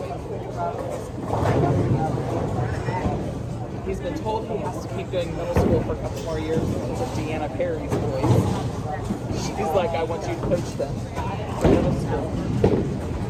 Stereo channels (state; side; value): identical; both; correlation 1.00